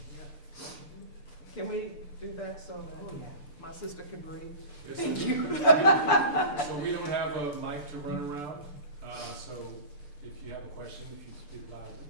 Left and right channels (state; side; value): late; right; 6.8 ms